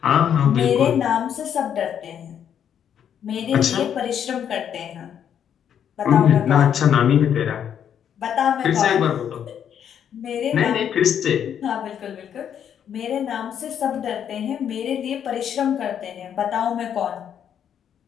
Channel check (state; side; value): quieter; right; 8.9 dB